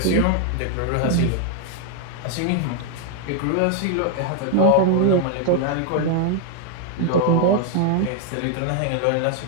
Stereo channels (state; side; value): different; both; correlation 0.00